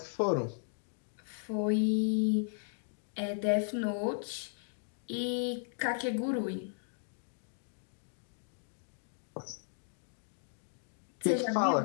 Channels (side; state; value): right; silent; digital silence